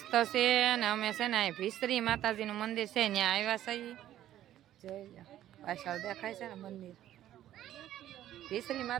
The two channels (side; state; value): left; quieter; 12.5 dB